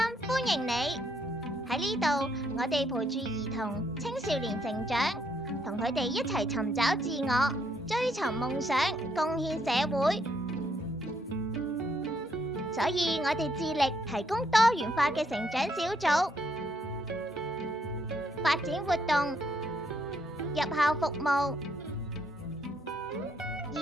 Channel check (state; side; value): normal; both; correlation 0.73